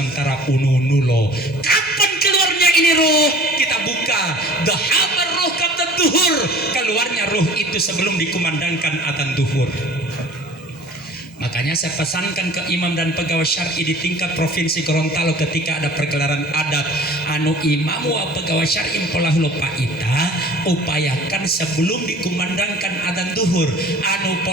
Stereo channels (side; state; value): both; normal; correlation 0.46